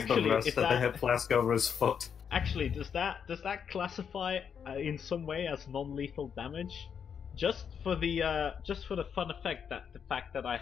the rest if of the that- hip flask over his foot. Actually, does that classify in some way as non-lethal damage? Just for the fun effect that the fact that I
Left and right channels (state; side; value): quieter; right; 7.3 dB